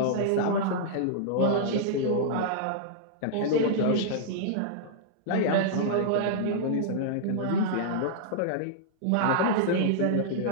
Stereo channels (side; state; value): both; different; correlation -0.02